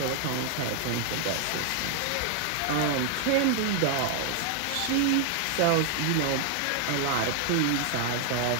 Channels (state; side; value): different; both; correlation 0.00